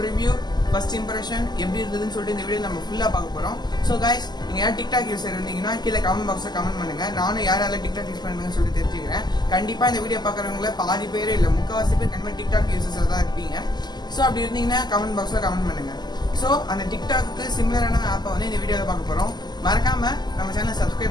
ரிவ்யூ, ஃபர்ஸ்ட் இம்ப்ரெஷன் எப்படி இருந்ததுன்னு சொல்லிட்டு இந்த வீடியோ நம்ம ஃபுல்லா பார்க்க போறோம். ஸோ கைஸ், நீங்க யார் டிக்டாக் யூஸர் இருந்தீங்கன்னா கீழே கமெண்ட் பாக்ஸ்ல கமெண்ட் பண்ணுங்க. நானும் யாரால டிக்டாக் யூஸ் பண்ணுங்கன்னு சொல்லிட்டு தெரிஞ்சுக்கிறேன். கண்டிப்பா இந்த வீடியோ பாக்குறவங்கள பாதி பேர் இல்ல முக்கால்வாசி பேர் கண்டிப்பா டிக்டாக் யூசர்ஸா தான் இருப்பீங்க. ஸோ அப்படி இருந்தீங்கன்னா கமெண்ட் பாக்ஸ்ல கமெண்ட் பண்ணுங்க. ஸோ அந்த டிக்டாக்கு சிமிலரான ஆப்பை வந்து இந்த வீடியோவில் பார்க்க போறோம். மறக்காம நம்ம சேனலை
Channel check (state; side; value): late; right; 0.21 ms